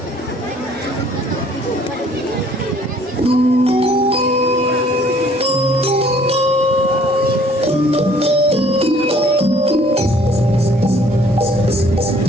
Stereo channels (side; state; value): both; normal; correlation 0.58